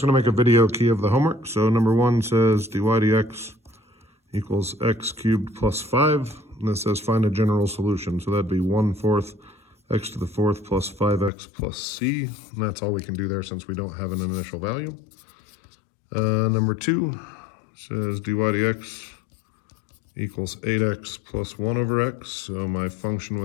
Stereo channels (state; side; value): drops out; right; at 11.3 s